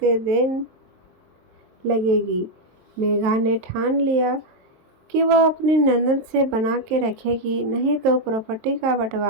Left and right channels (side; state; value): left; late; 23 ms